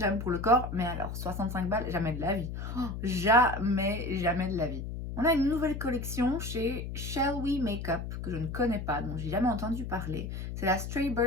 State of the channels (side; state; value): left; noise; hum, 6 dB below the sound